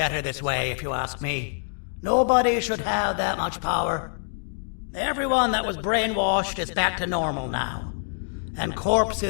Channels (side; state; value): right; silent; digital silence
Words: this way, if you ask me. Nobody should have that much power. Everyone that was brainwashed is back to normal now. And